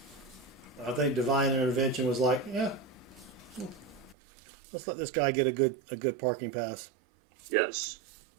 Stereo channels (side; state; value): left; drops out; at 4.2 s